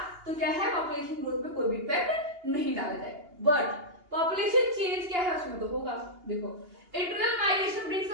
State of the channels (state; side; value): late; left; 2.8 ms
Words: तो क्या है पॉपुलेशन ग्रोथ पे कोई भी इफेक्ट नहीं डाला जाएगा। बट पॉपुलेशन चेंज क्या है उसमें तो होगा। देखो internal migration brings